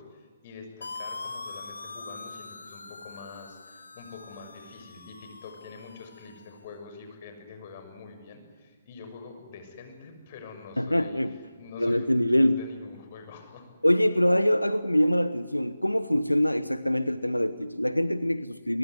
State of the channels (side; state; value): both; inverted; correlation -0.97